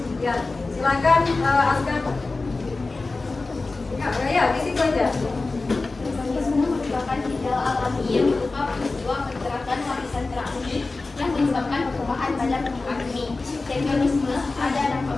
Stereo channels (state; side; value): quieter; right; 3.6 dB